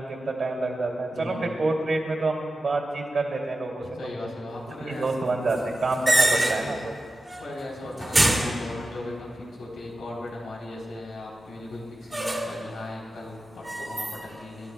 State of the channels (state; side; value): normal; both; correlation 0.94